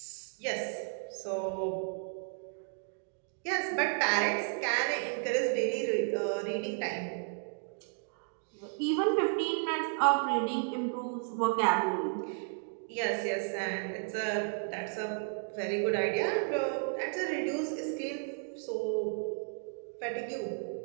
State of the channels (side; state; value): left; silent; 55 dB below the other